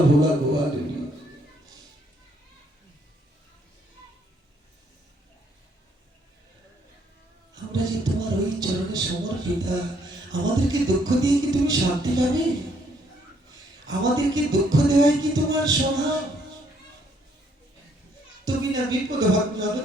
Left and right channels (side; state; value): both; normal; correlation 0.68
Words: ভোলা গোয়ালিনী। আমরা যে তোমার ওই চরণে সমর্পিতা, আমাদেরকে দুঃখ দিয়ে কি তুমি শান্তি পাবে? আমাদেরকে দুঃখ দেওয়াই কি তোমার স্বভাব? তুমি না বিপদ ভাবনা,